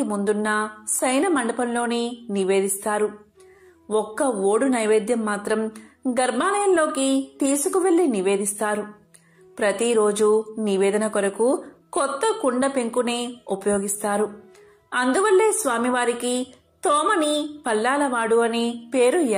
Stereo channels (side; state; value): both; identical; correlation 1.00